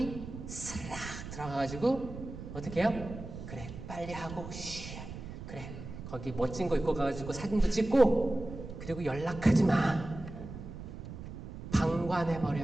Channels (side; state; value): right; noise; rumble, 10 dB below the sound